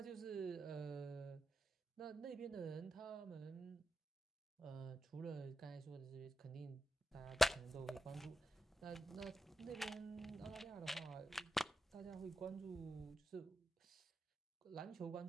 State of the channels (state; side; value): normal; both; correlation 0.90